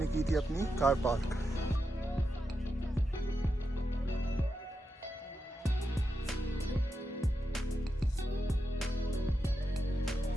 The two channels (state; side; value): normal; both; correlation 0.87